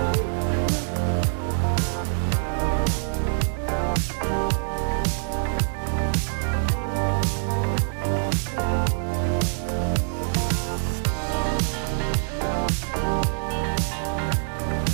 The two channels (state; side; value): silent; left; digital silence